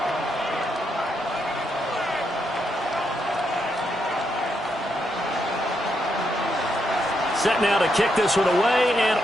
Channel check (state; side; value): normal; both; correlation 0.80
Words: Set now to kick this one away, and